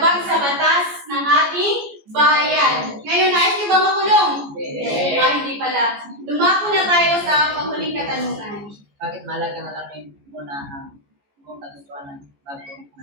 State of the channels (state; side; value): late; left; 14 ms